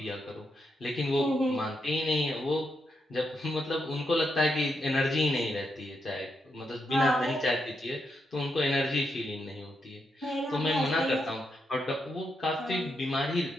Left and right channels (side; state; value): both; normal; correlation 0.82